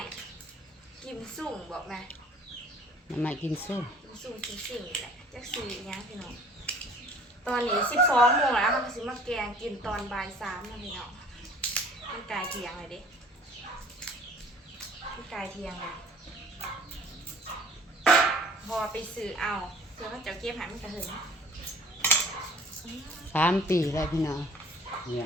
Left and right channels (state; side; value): normal; both; correlation 0.50